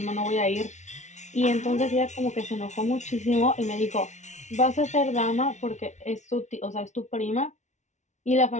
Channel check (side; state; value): right; late; 0.34 ms